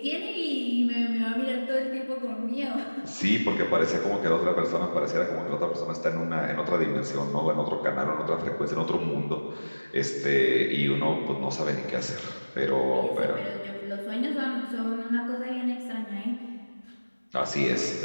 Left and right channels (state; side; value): inverted; both; correlation -1.00